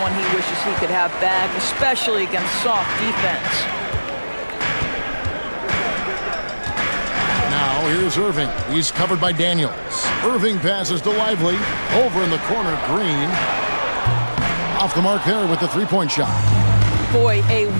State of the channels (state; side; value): inverted; both; correlation -1.00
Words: he wishes he could have back, especially against soft defense. Now here's Irving. He's covered by Daniels. Irving passes to Lively. Over in the corner, Green. Off the mark there with the three-point shot. Boy, a